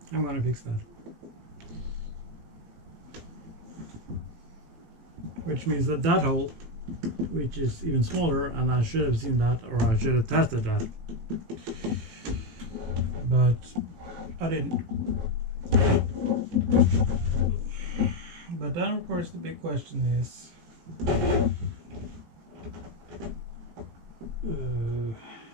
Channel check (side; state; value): left; late; 18 ms